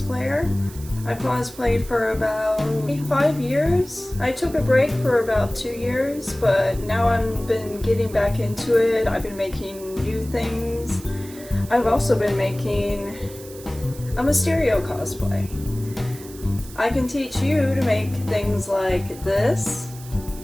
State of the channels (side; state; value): right; noise; hiss, 18 dB below the sound